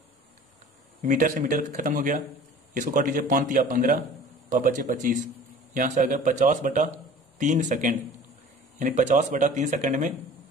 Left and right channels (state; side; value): normal; both; correlation 0.44